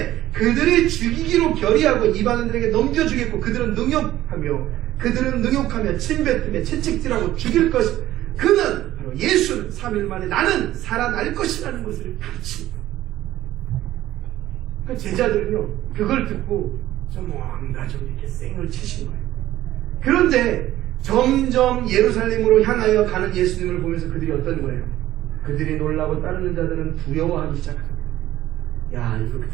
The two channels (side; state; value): left; quieter; 14.3 dB